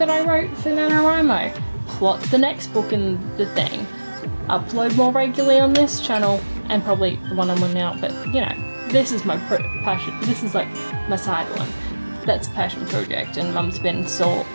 I wrote for NaNoWriMo, plot the next book in the thing, upload more regularly on this channel, and probably the one I'm on now, but you know, this is my passion, this is like my side one. That's a passion project, and Mum's been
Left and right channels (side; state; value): both; inverted; correlation -1.00